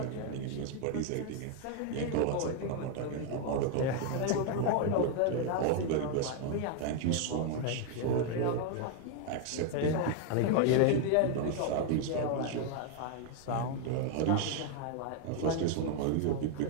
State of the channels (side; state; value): both; different; correlation 0.00